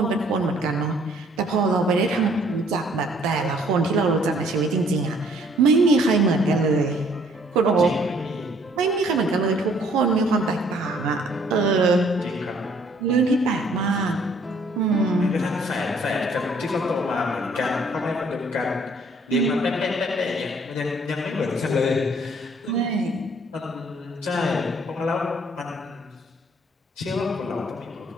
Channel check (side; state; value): both; normal; correlation 0.61